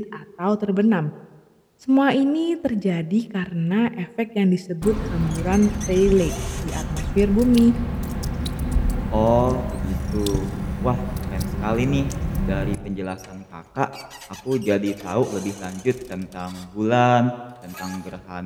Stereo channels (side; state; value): both; identical; correlation 1.00